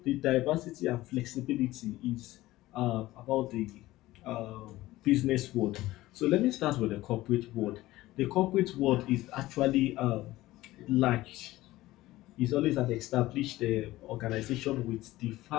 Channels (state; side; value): quieter; right; 17.1 dB